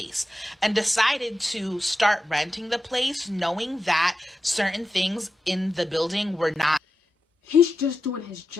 and decided to start renting the place, knowing that certain things in the building were not. He's just doing his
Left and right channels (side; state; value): both; normal; correlation 0.90